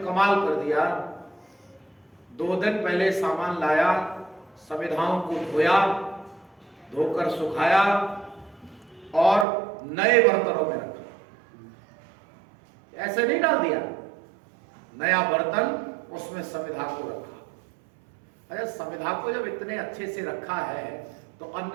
कर दिया, 2 दिन पहले सामान लाया, संविधाओं को धोया, धोकर सुखाया और नए बर्तनों में रखा। ऐसे नहीं डाल दिया, नया बर्तन उसमें संविधा को रखा। अरे संविधा को जब इतने अच्छे से रखा है तो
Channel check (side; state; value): left; drops out; at 9.5 s